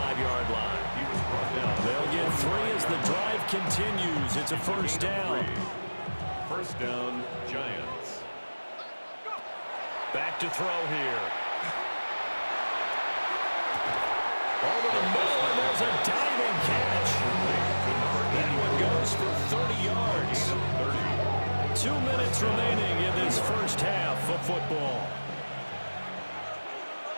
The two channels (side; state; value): both; inverted; correlation -1.00